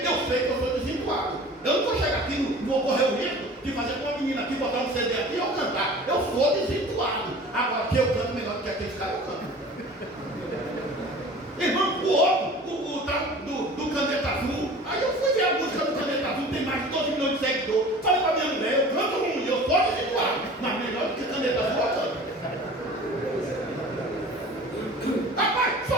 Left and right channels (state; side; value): normal; both; correlation 0.42